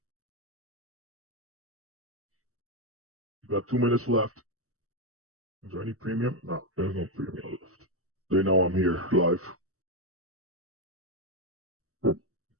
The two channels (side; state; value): left; late; 0.64 ms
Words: You got 2 minutes left. Is there any premium? No, there's no premium left. They know I'm here live.